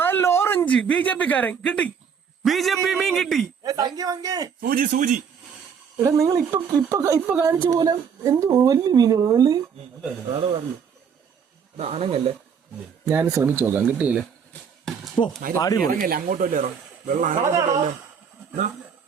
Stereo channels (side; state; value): left; quieter; 6.9 dB